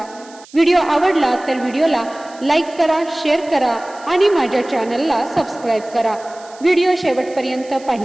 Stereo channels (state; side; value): noise; right; hiss, 23 dB below the sound